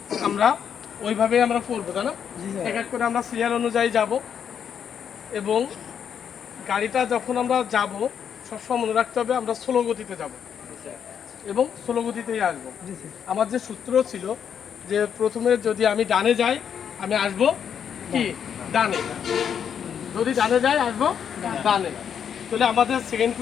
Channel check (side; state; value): right; quieter; 8.0 dB